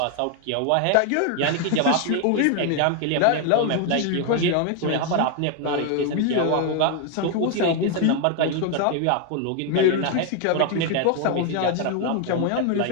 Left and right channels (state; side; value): different; both; correlation 0.01